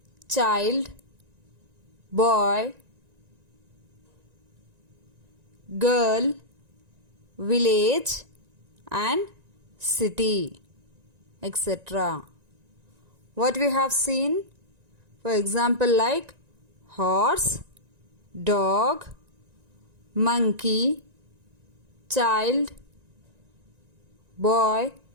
child, boy, girl, village and city, etc. What we have seen? For example, like horse, dog, monkey, child, boy,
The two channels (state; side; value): late; left; 1.9 ms